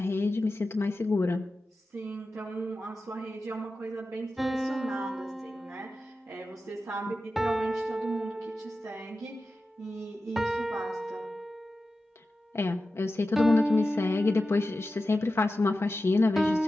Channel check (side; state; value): both; normal; correlation 0.93